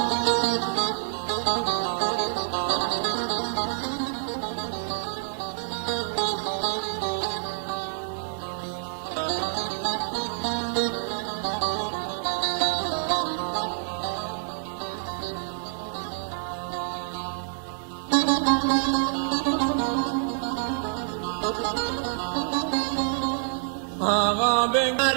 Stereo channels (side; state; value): left; silent; digital silence